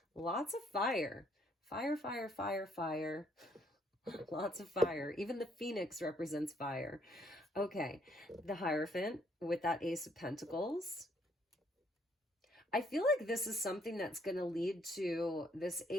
Lots of fire. Fire, fire, fire, fire. Lots of fire. Even the Phoenix represents fire. Okay, the Hierophant with that Ace of Pentacles. I feel like this is something that's going to lead to this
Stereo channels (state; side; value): normal; both; correlation 0.67